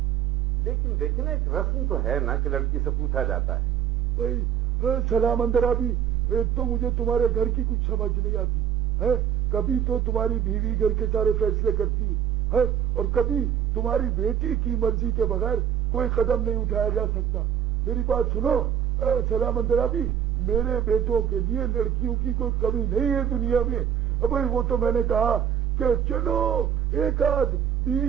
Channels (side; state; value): left; quieter; 9.3 dB